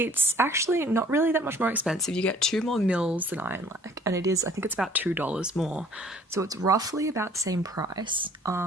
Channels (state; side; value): normal; both; correlation 0.54